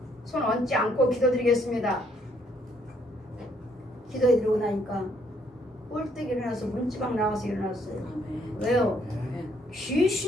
얹지 않고 기도드리겠습니다. 기도해드리고 나니까 꼴떡 일어나서 문지방 나와서 일어났어요. 왜요?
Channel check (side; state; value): both; normal; correlation 0.68